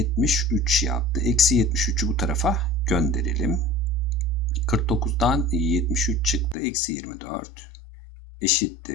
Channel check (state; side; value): drops out; right; at 6.6 s